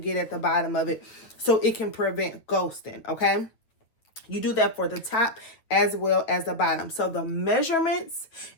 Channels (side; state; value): right; late; 8.8 ms